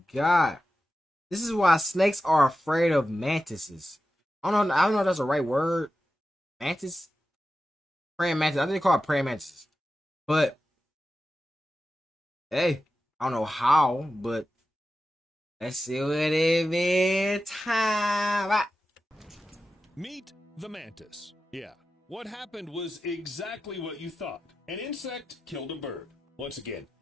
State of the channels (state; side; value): normal; both; correlation 0.92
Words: got. This is why snakes are afraid of mantises. I don't know if that's the right word. Mantis? Praying mantis. I think they call it praying mantises. But hey, I don't know how, but let's see what it is. Time. Meet the mantis. Yeah, what happened was exactly what you thought. An insect killed a bird. Once again,